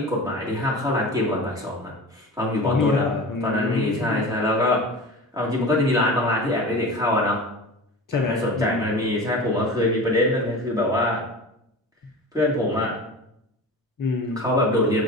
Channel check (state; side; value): normal; both; correlation 0.33